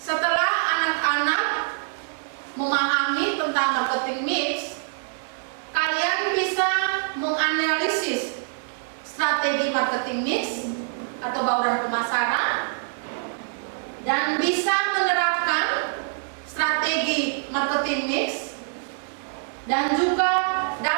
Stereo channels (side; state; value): left; silent; digital silence